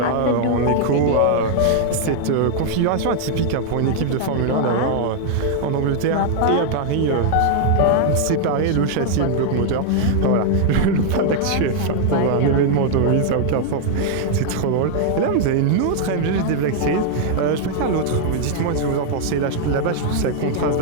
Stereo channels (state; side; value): different; both; correlation 0.00